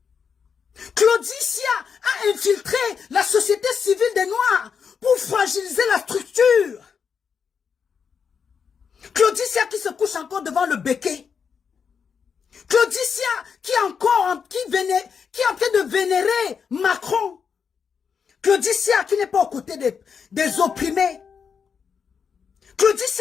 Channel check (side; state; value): right; quieter; 6.4 dB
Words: Claudicia a infiltré la société civile des Noirs pour fragiliser la structure. Claudicia qui se couche encore devant le béquet. Claudicia qui est en train de vénérer Macron. Claudicia qui n'est pas aux côtés des opprimés.